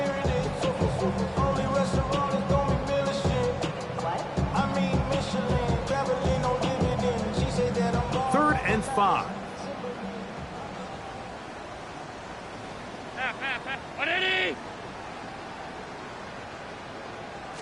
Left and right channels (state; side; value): identical; both; correlation 1.00